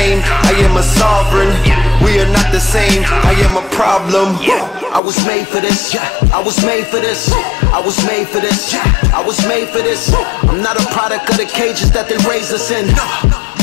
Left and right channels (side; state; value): right; drops out; at 5.0 s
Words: I am a sovereign. We are not the same, I am a problem. I was made for this, I was made for this. I was made for this, I was made for this. I'm not a product of the cages that they raised us in.